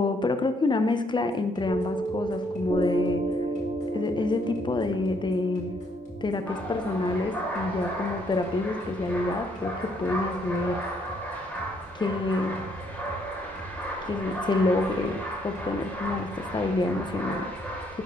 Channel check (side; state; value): both; normal; correlation 0.70